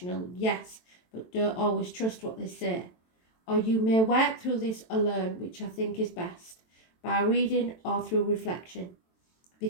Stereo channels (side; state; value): right; late; 23 ms